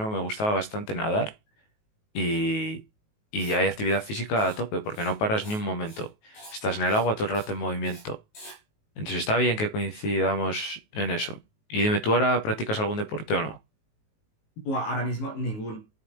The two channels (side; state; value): right; late; 19 ms